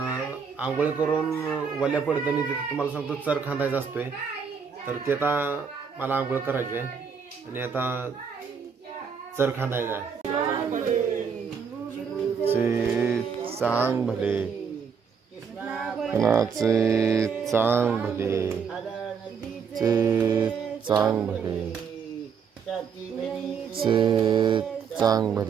आंघोळ करून वल्या पडताना तिथं तुम्हाला सांगतो चर खांदायचा असतोय। तर ते आता मला आंघोळ करायची आहे आणि आता चर खांदायचा आहे। चांग भले कोणाचे चांग भले चांग भले चांग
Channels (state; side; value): quieter; left; 6.4 dB